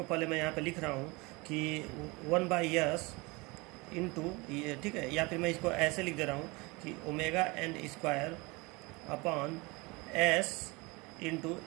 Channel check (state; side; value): quieter; left; 25.3 dB